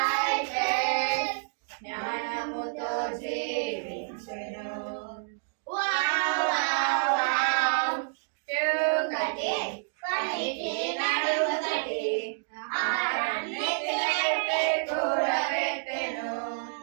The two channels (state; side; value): silent; left; digital silence